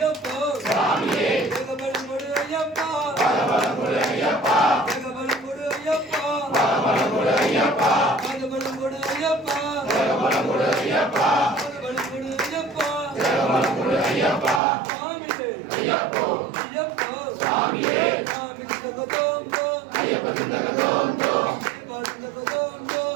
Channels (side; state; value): left; drops out; at 14.6 s